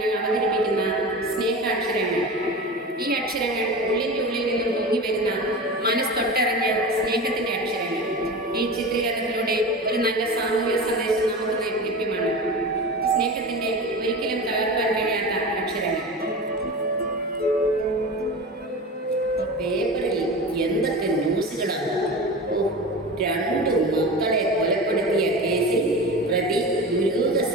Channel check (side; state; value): both; normal; correlation 0.30